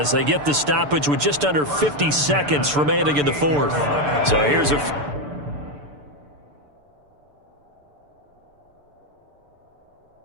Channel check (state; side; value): late; left; 6.8 ms